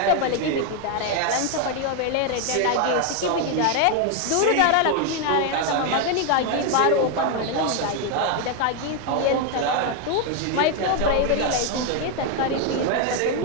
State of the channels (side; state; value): both; different; correlation 0.01